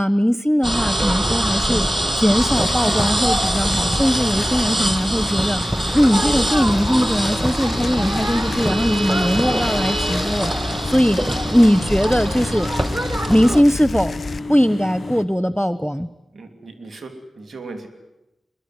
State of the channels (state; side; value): normal; both; correlation 0.97